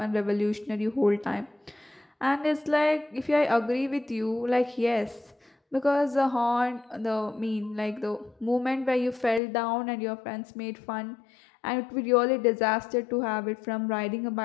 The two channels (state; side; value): drops out; right; at 9.4 s